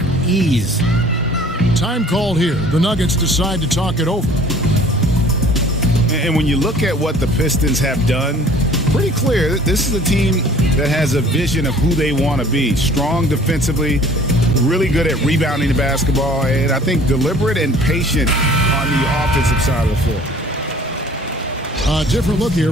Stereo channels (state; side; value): normal; both; correlation 0.50